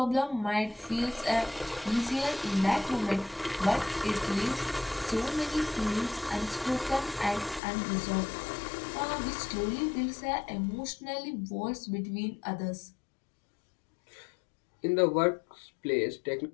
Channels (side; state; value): right; drops out; at 7.6 s